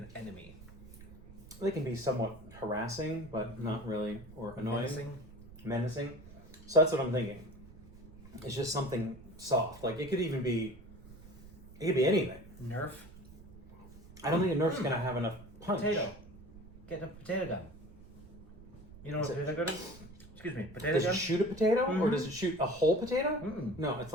enemy. They can be somewhat harassing, but not really, or annoying. Menacing. So that's what I'm thinking. It's just something soft. Like it could be anything. Nerf. I don't think a Nerf's gonna have enough punch. Potato. Get a potato gun. You know what a potato gun is? Excuse me, potato Does gun? it shoot a potato, or Mhm. does it shoot a whole potato? Mm-mm. No, it's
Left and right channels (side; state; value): right; noise; rumble, 19 dB below the sound